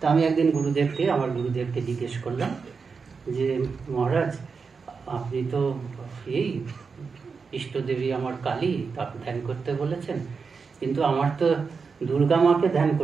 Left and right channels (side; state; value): left; quieter; 5.2 dB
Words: আমি একদিন আমার গুরুদেবকে জিজ্ঞেস করলাম যে মহারাজ, আপনি তো এই ইষ্টদেবী আমার কালী, তাকে ধ্যান করতে বলেছেন, কিন্তু আমার তো দুর্গা মাকে ধ্যান